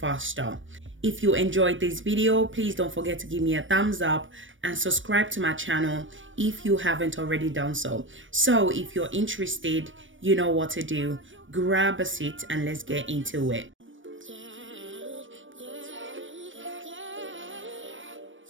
If you enjoyed this video, please don't forget to give me a thumbs up and subscribe to my channel if you haven't already done so. So if you're interested, you know what to do. Grab a seat and let's get into it.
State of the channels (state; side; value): late; left; 0.56 ms